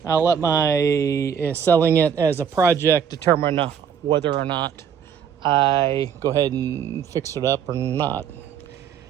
I'll let my selling it as a project determine whether or not I go ahead and fix it up or not.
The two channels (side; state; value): left; quieter; 7.9 dB